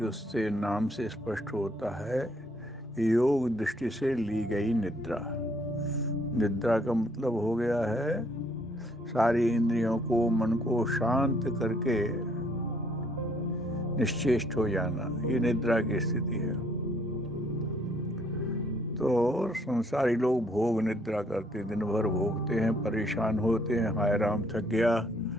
उससे नाम से स्पष्ट होता है, योग दृष्टि से ली गई निद्रा। निद्रा का मतलब हो गया है सारी इंद्रियों को, मन को शांत करके निश्चेष्ट हो जाना। ये निद्रा की स्थिति है। तो संसारी लोग भोग निद्रा करते, दिन भर भोगते हैं, परेशान होते हैं, हाय राम थक गया,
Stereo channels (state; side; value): normal; both; correlation 0.66